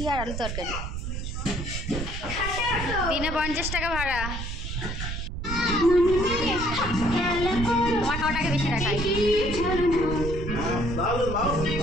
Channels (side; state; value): right; noise; rumble, 5 dB below the sound